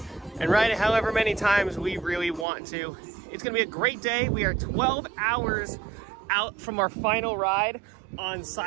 and ride it however many times we really want to. It's gonna be a great day. We are 12 hours out from our final ride on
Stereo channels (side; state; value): left; drops out; at 2.5 s